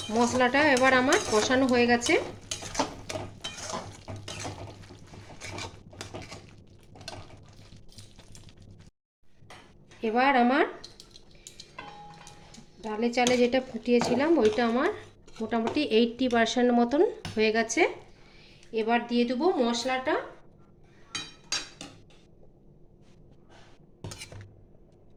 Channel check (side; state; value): both; identical; correlation 1.00